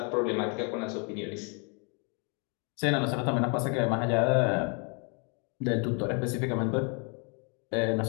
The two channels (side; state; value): right; quieter; 36.2 dB